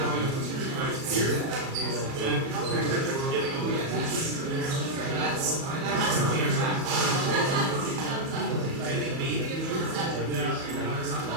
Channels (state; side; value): late; left; 37 ms